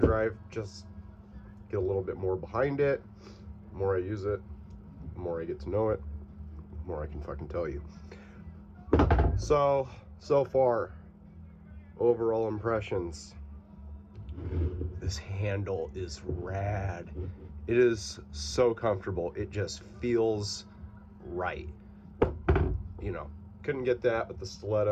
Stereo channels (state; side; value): identical; both; correlation 1.00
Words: drive, just get a little bit more behind it. The more I use it, the more I get to know it, the more I can fucking tell you. So far, overall impressions. This handle is rad. It is so comfortable. It just feels right. You know, couldn't get that with the